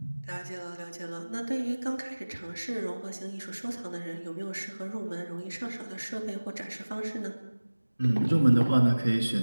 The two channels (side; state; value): both; inverted; correlation -1.00